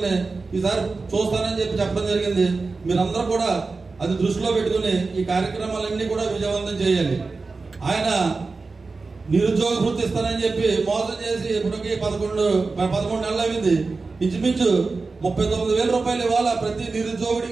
ఈసారి చూస్తానని చెప్పి చెప్పడం జరిగింది. మీరందరూ కూడా అది దృష్టిలో పెట్టుకుని ఈ కార్యక్రమాలన్నీ కూడా విజయవంతం చేయాలి. ఆయన నిరుద్యోగ వృత్తి ఇస్తానని చెప్పి మోసం చేసి ఇప్పటికి 11 నెలలు అయింది. ఇంచుమించు 39,000 రూపాయలు ఇవాళ ప్రతి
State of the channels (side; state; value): left; quieter; 4.0 dB